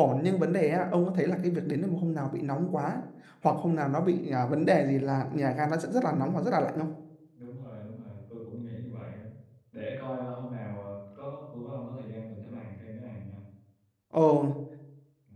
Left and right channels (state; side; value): identical; both; correlation 1.00